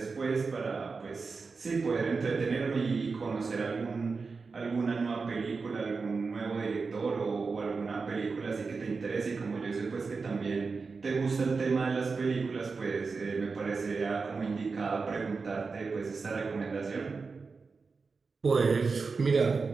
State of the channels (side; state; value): left; quieter; 4.6 dB